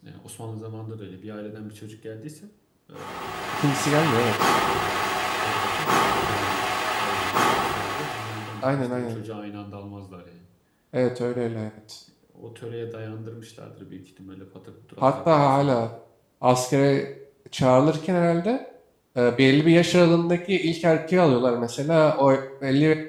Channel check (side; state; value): both; identical; correlation 1.00